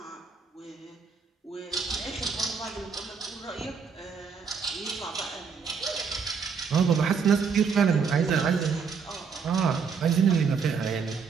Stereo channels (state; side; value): quieter; left; 5.8 dB